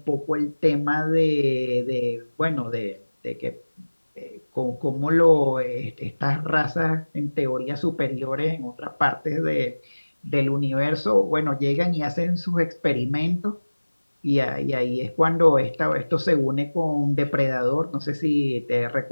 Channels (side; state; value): both; inverted; correlation -1.00